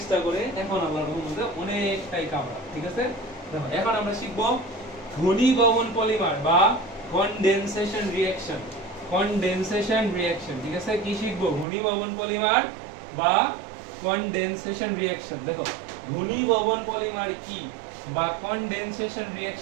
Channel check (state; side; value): drops out; left; at 11.7 s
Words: করে এখন আল্লাহর রহমতে অনেকটাই কামড়া ঠিক আছে দেখো এখন আমরা শিখব ঘনীভবন পলিমার বা কনডেনসেশন রিঅ্যাকশন ঠিক আছে কি শিখব ঘনীভবন পলিমার বা কনডেনসেশন রিঅ্যাকশন দেখো ঘনীভবন পলিমার কি বা কনডেনসেশন